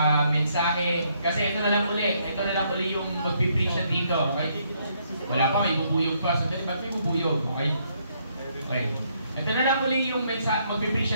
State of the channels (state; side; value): inverted; both; correlation -0.71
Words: mensahe. Kasi ito na lang uli yung magpipreach na dito, okay? Wala pa, may bubuyog pa. So, ba't may bubuyog, okay? Okay. Ito na lang uli yung mensahe, magpipreach